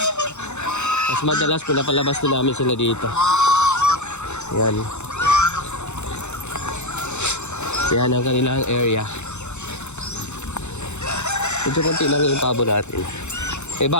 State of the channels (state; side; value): late; right; 0.83 ms